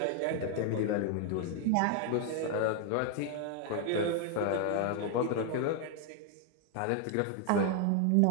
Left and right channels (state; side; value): different; both; correlation 0.00